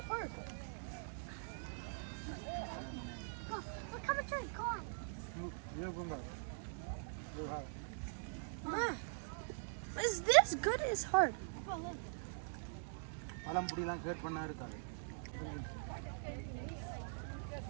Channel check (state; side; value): silent; left; digital silence